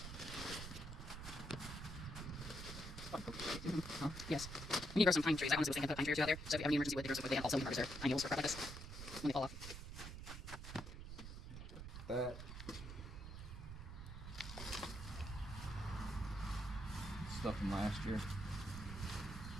Yes. We need to grow some pine trees. I honestly was thinking put pine trees out there. So if you have any emergency wood, they grow some wood. They have also harvest their pine needles for crap like this when they fall off. That stuff from last year.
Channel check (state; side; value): noise; right; rumble, 9 dB below the sound